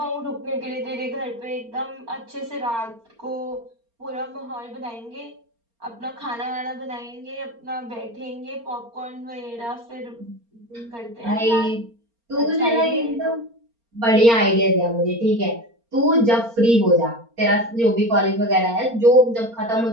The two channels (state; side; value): late; left; 4.3 ms